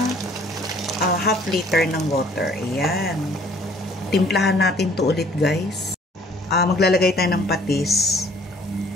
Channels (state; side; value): normal; both; correlation 0.57